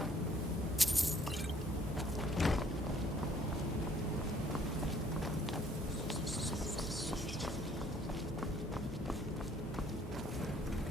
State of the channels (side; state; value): both; normal; correlation 0.61